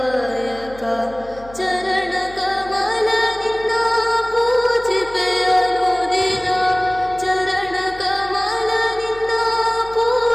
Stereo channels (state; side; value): noise; left; hum, 20 dB below the sound